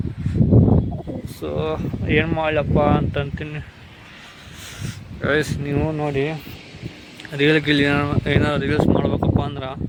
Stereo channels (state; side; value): identical; both; correlation 1.00